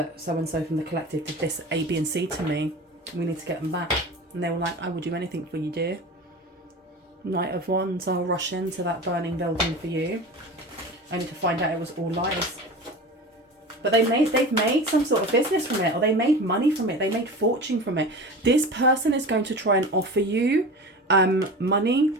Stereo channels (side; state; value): both; normal; correlation 0.33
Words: so-and-so from the collective did this A, B and C to me, we need to get them back. And they were like, I will do anything for you, dear. Knight of Wands, I'll rush into that burning building for you, only to find out it was all lies. But they've made some sort of business from it, or they made money from it, they made fortune from it. This person is going to try and offer you money.